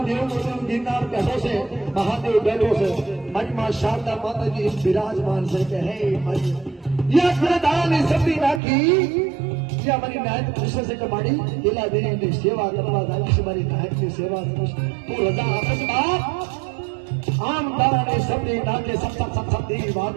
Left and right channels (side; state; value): left; drops out; at 8.6 s